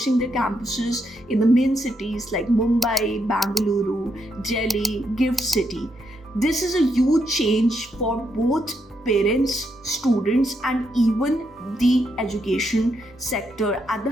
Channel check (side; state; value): both; normal; correlation 0.79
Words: their campuses in the main cities like Mumbai, Bangalore, Delhi, Gift City. This is a huge change for both parents, students, and even the education sector at the